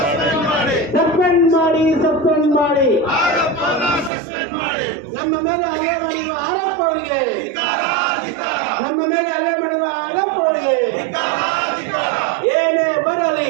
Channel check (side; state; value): left; drops out; at 4.1 s